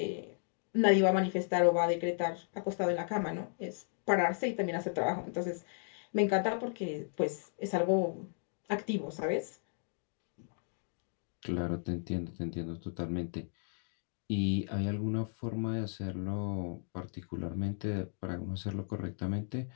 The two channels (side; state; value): right; silent; digital silence